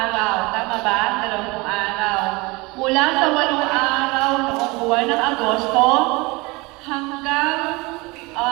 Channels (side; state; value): left; quieter; 24.8 dB